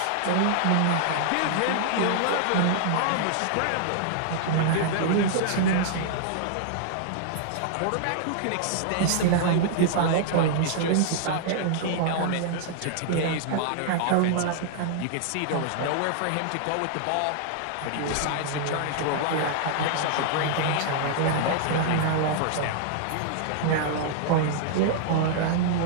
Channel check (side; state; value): both; different; correlation -0.01